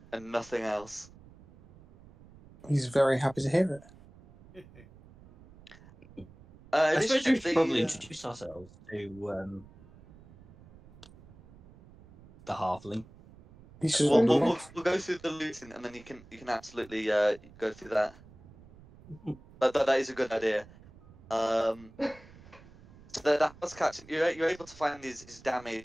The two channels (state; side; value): noise; right; rumble, 23 dB below the sound